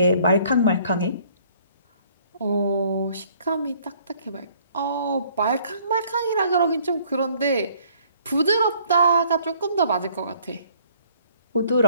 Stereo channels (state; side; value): inverted; both; correlation -0.60